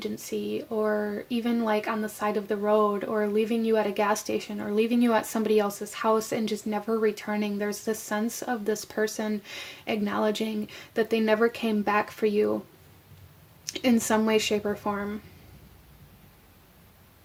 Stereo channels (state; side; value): identical; both; correlation 1.00